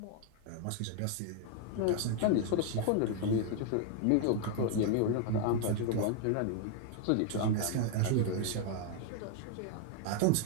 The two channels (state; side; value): different; both; correlation 0.00